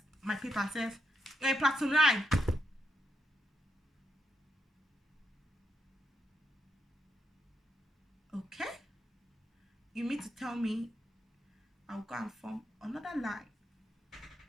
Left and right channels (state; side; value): normal; both; correlation 0.83